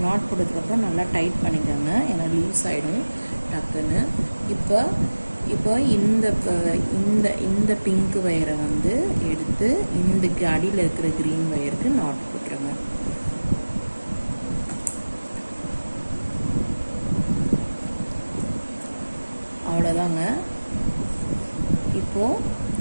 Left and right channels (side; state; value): both; inverted; correlation -1.00